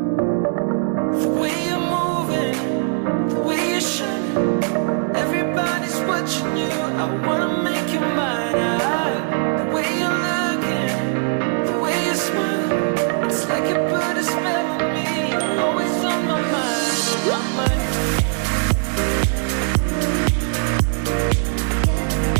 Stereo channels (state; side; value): silent; left; 56 dB below the other